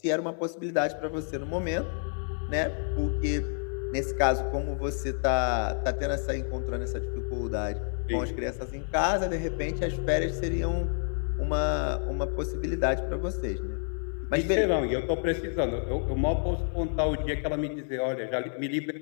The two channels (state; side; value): silent; right; 58 dB below the other